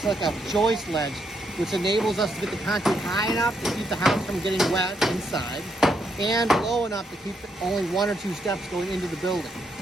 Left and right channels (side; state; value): both; normal; correlation 0.77